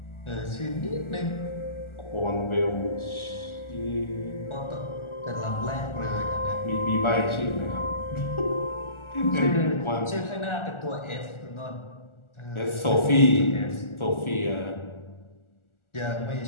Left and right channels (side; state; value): right; late; 1.4 ms